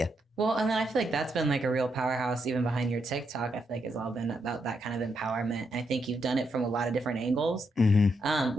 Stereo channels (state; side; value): normal; both; correlation 0.80